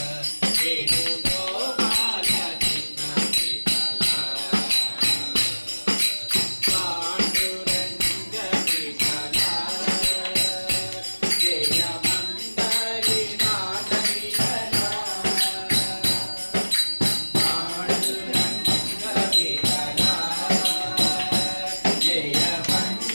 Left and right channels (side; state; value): both; inverted; correlation -1.00